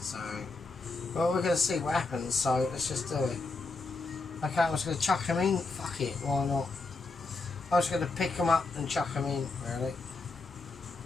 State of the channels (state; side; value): quieter; right; 3.6 dB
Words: so well, we're going to see what happens. So let's just do it. Okay, I'm just going to chuck them in. Fuck it, why not? I'm just going to pick them up and chuck them in. Really,